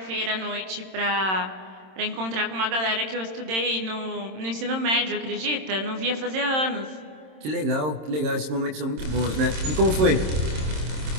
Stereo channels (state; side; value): late; left; 26 ms